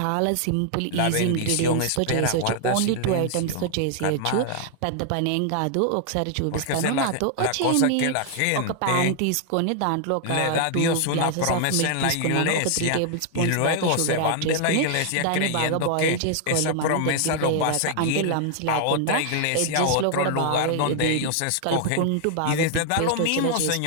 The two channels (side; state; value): both; different; correlation 0.00